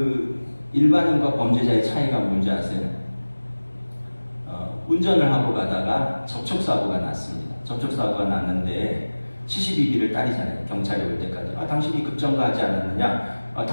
일반인과 범죄자의 차이가 뭔지 아세요? 운전을 하고 가다가 접촉사고가 났습니다. 접촉사고가 났는데 72비를 따리잖아요. 경찰이 올 때까지. 당신이 급정거하지 않았느냐?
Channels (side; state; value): both; inverted; correlation -1.00